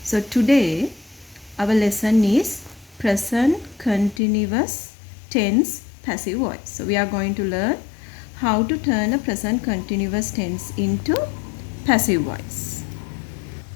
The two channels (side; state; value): right; drops out; at 4.2 s